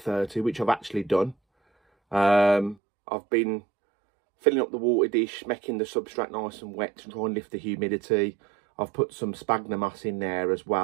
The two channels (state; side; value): drops out; left; at 2.8 s